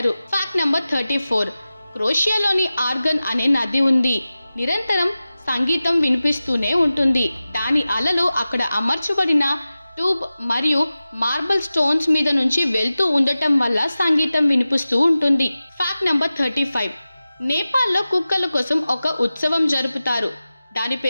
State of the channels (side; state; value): both; inverted; correlation -0.95